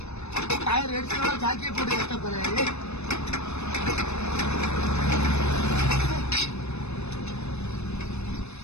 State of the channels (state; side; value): late; right; 0.81 ms